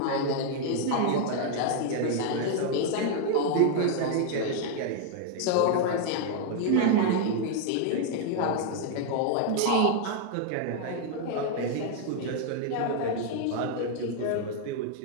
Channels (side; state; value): both; different; correlation 0.00